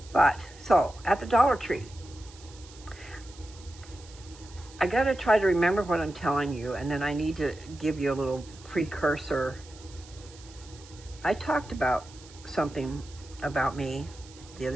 But, so, at the Dollar Tree, I gotta try to remember what I'm telling you, and then I need to give you a little precursor. I talked about something about me the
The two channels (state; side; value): noise; right; hiss, 21 dB below the sound